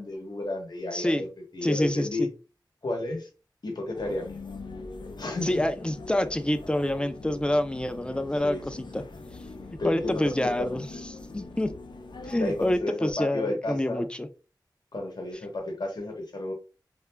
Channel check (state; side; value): normal; both; correlation 0.92